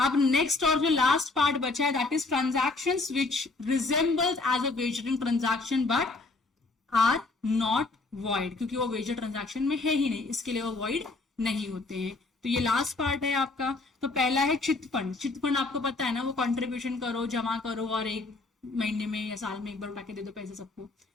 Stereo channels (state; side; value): quieter; right; 3.5 dB